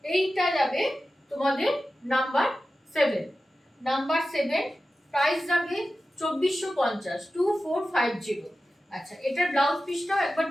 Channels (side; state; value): both; normal; correlation 0.94